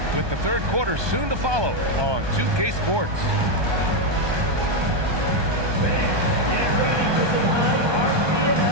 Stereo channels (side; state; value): left; late; 1.2 ms